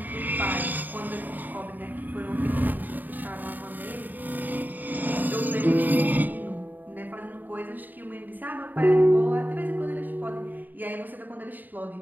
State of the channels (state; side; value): late; left; 0.087 ms